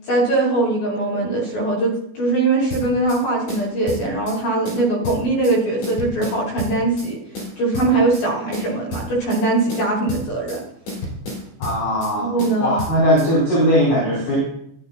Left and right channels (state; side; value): late; right; 18 ms